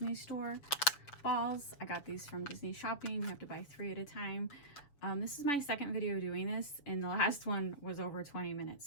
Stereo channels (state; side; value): late; right; 7.0 ms